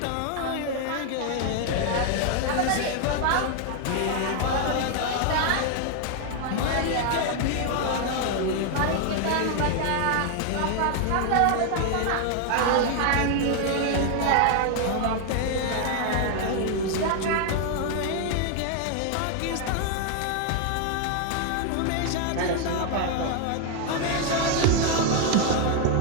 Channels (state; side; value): different; both; correlation 0.00